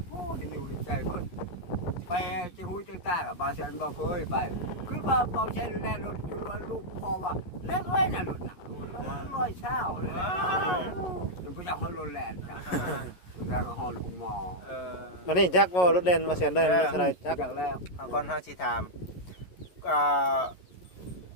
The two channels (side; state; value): right; late; 11 ms